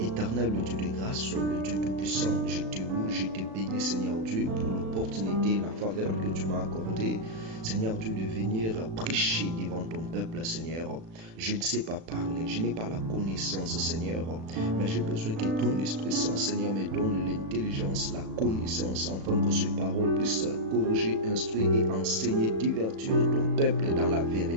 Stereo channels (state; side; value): late; left; 36 ms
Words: le Dieu de grâce, le Dieu tout-puissant, je te loue, je te bénis, Seigneur Dieu, pour l'opportunité, la faveur que tu m'as accordée, Seigneur Dieu, de venir prêcher devant ton peuple, Seigneur. Je ne sais pas parler, je n'ai pas la connaissance, Seigneur, mais j'ai besoin que ton Esprit Saint, Seigneur, me donne l'intelligence, la connaissance, afin que ces paroles puissent corriger, instruire et enseigner, divertir ton peuple dans la